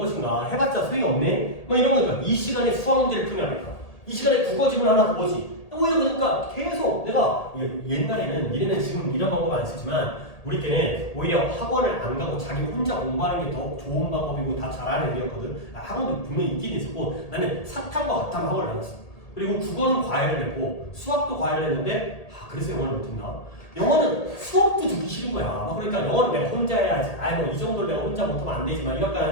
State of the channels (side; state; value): right; late; 1.8 ms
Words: 해봤자 소용이 없네 뭐 이런 거니까 이 시간에 수학 문제를 풀면 안 될까, 이 시간에 국어 지문 하나 더 보지. 오히려 그러니까 계속 내가 옛날에는 니네는 지금 이런 방법 안 쓰지만 우리 때는 오히려 학원을 안 가고 자기 혼자 공부하는 게 더 좋은 방법이고 다 잘하는 애였거든. 학원도 분명히 있긴 있었고 나는 사탕과 같은 학원을 다녔어. 그리고 국어는 과외를 했고 수학도 과외를 했는데 그래서 영어를 못했나? 영어는 수업도 듣기 싫은 거야. 그러니까 영어는 내가 혼자 해야지. 뭐 이 정도를 내가 혼자 못하면 안 되지만